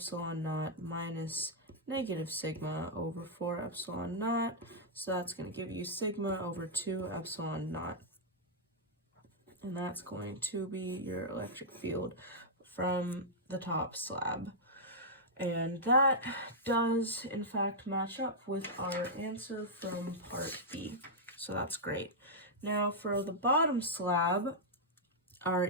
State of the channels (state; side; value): normal; both; correlation -0.08